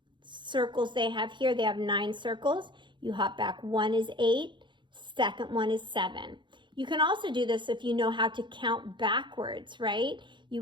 circles they have here, they have 9 circles. You hop back. 1 is 8. Second one is 7. You can also do this if you know how to count backwards, right? You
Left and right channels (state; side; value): late; left; 0.23 ms